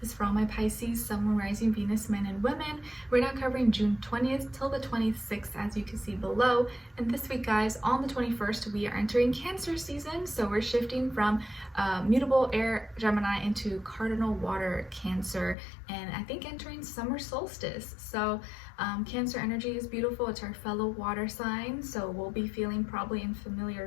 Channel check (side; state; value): right; drops out; at 15.6 s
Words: is for all my Pisces, Sun, Moon, Rising, Venus, men and women. We're now covering June 20th till the 26th, as you can see below. And this week, guys, on the 21st, we are entering Cancer season. So we're shifting from mutable air Gemini into cardinal water Cancer, and I think entering summer solstice. So Cancer energy is beautiful. It's our fellow water sign, so we'll be feeling probably in